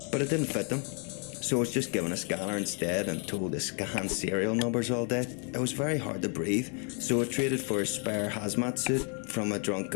But it didn't fit them. So I was just given a scanner instead and told to scan serial numbers all day. It was very hard to breathe, so I traded for a spare hazmat suit from a drunk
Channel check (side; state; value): right; quieter; 39.4 dB